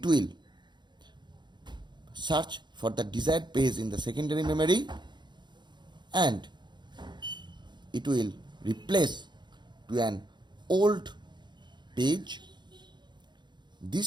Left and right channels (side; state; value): left; late; 0.22 ms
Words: will search for the desired page in the secondary memory and it will replace to an old page.